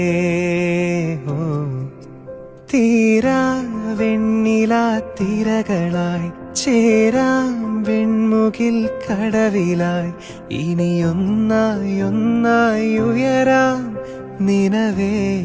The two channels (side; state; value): both; identical; correlation 1.00